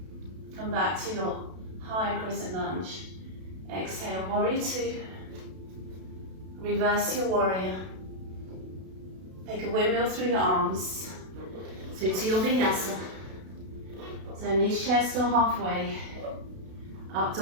Come back to your high crescent lunge. Exhale, warrior two. Reverse your warrior. Take a windmill through your arms. Through to your Vinyasa. So knees chest or halfway. Up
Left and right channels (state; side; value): late; left; 32 ms